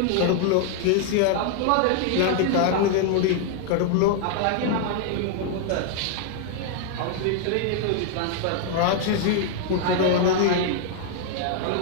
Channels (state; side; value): different; both; correlation 0.00